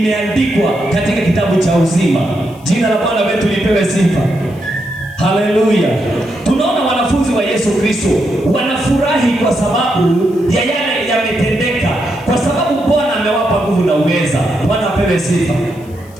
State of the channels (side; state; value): left; noise; hiss, 27 dB below the sound